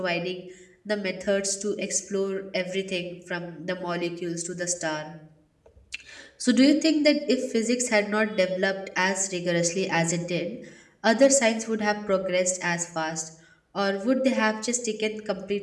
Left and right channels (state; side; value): identical; both; correlation 1.00